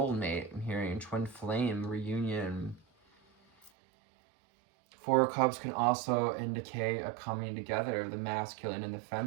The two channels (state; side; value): drops out; left; at 3.7 s